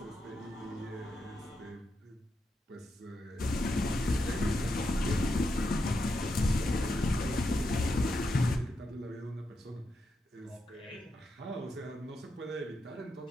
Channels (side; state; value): both; normal; correlation 0.85